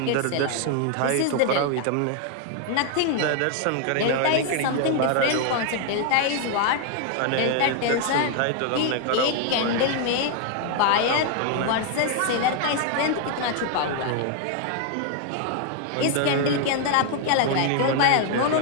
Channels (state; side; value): different; both; correlation 0.00